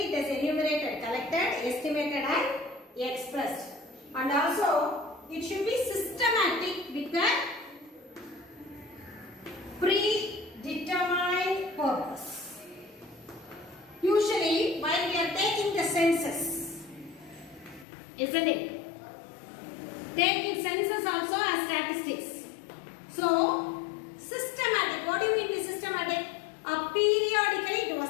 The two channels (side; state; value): right; drops out; at 17.9 s